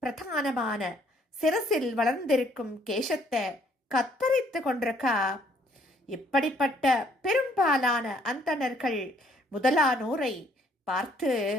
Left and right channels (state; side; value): normal; both; correlation 0.64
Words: பிரதானமான சிரசில் வளர்ந்திருக்கும் கேசத்தை கத்தரித்து கொண்டிருக்கா. இப்படிப்பட்ட பெரும்பாலான அந்தணர்கள் முதலானோரை பார்த்து